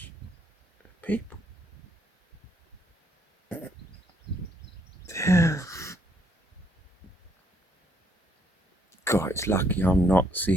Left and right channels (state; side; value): normal; both; correlation 0.70